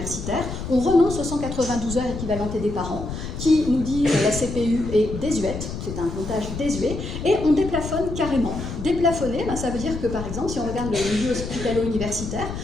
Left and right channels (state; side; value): noise; left; rumble, 7 dB below the sound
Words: On renonce aux 192 heures équivalentées des parents, qui nous dit la CPU est désuète, c'est un comptage désuet, et on déplafonne carrément. Déplafonner, ça veut dire que, par exemple, si on regarde le milieu hospitalo-universitaire,